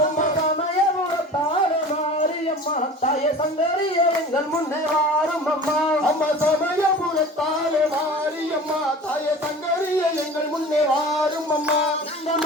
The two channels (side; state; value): both; normal; correlation 0.39